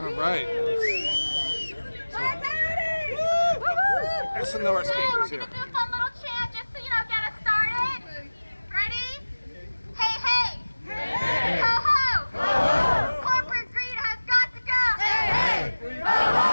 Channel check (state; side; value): inverted; both; correlation -1.00